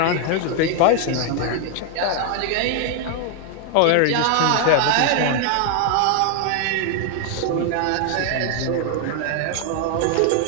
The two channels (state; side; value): different; both; correlation 0.00